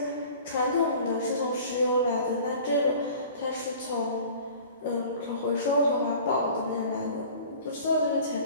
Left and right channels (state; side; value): inverted; both; correlation -0.44